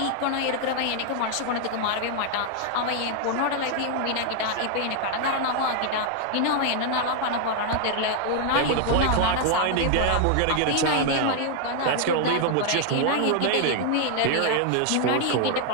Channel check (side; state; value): both; different; correlation 0.00